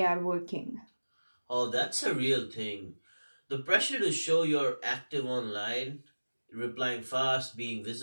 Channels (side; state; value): both; inverted; correlation -1.00